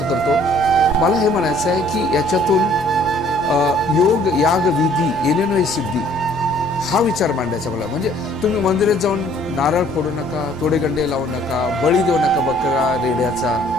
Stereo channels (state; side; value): normal; both; correlation 0.58